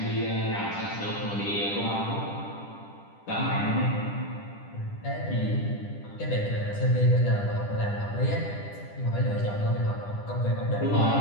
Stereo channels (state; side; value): late; right; 10 ms